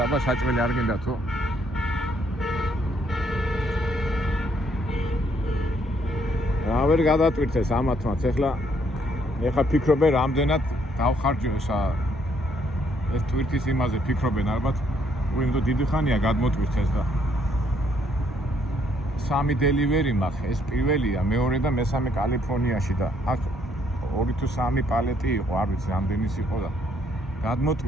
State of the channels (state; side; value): normal; both; correlation 0.68